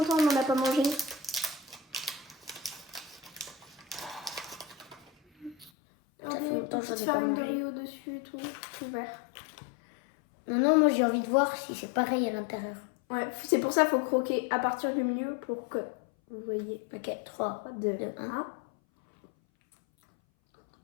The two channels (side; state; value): right; drops out; at 5.7 s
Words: qu'on n'en a pas mangé. Ça fait Regardez, longtemps que j'en petite ai pas farine de mangé. riz au-dessus et tout vert. Non, moi j'ai envie de voir si c'est pareil à l'intérieur. Ouais, c'est pour ça qu'il faut croquer à partir du milieu pour que vous voyez. Ok, 3, 2, 2,